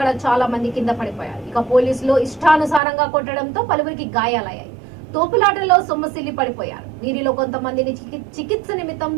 చాలా మంది కింద పడిపోయారు. ఇక పోలీసులు ఇష్టానుసారంగా కొట్టడంతో పలువురికి గాయాలయ్యాయి. తోపులాటలో సొమ్మసిల్లి పడిపోయారు. వీరిలో కొంతమందిని చికిత్స నిమిత్తం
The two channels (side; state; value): left; drops out; at 2.8 s